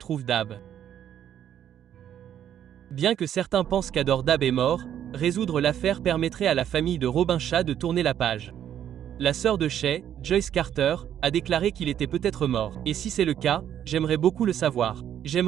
Dabb. Bien que certains pensent qu'Adore Dabb est mort, résoudre l'affaire permettrait à la famille de Robin Shah de tourner la page. La sœur de Shay, Joyce Carter, a déclaré qu'il était peut-être mort. Et si c'est le cas, j'aimerais beaucoup le savoir.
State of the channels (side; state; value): left; quieter; 10.1 dB